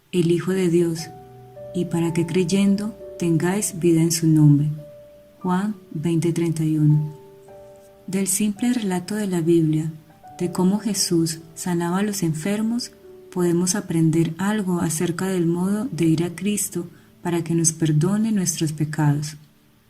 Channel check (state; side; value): identical; both; correlation 1.00